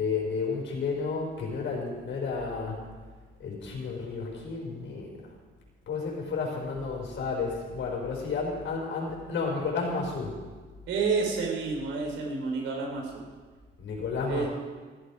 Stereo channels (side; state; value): both; normal; correlation 0.30